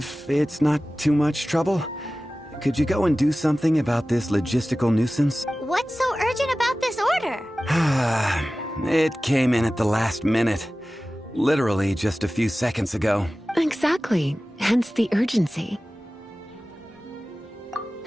it's not too much trouble, could you go and do something about this logistical nuisance? What's so urgent about this order? It came in at the last minute. Literally just a few seconds ago. Exactly. Hence the urgency.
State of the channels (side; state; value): both; normal; correlation 0.96